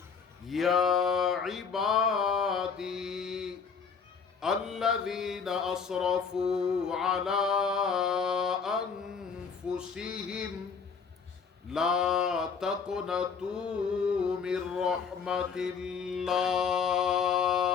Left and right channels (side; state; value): right; quieter; 5.9 dB